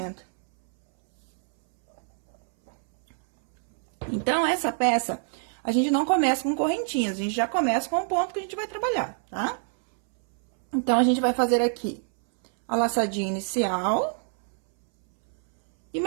Então, essa peça, a gente não começa com correntinhas. A gente já começa com o ponto que a gente vai trabalhar, tá? Então, a gente vai fazer aqui a laçadinha inicial e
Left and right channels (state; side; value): silent; left; 61 dB below the other